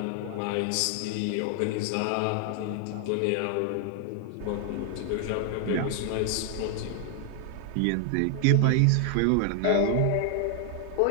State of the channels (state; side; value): different; both; correlation 0.00